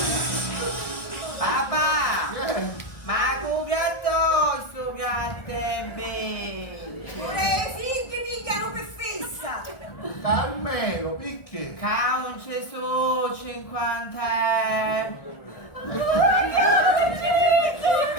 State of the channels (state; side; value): late; right; 1.6 ms